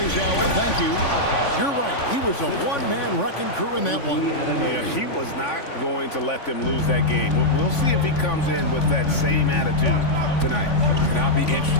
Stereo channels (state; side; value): late; right; 3.5 ms